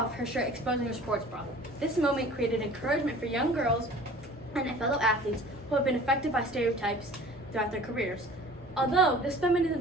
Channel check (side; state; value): both; normal; correlation 0.45